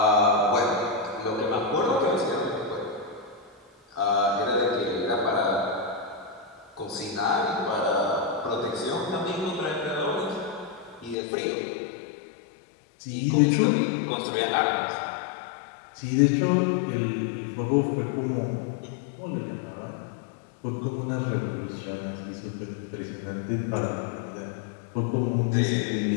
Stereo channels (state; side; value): drops out; right; at 11.2 s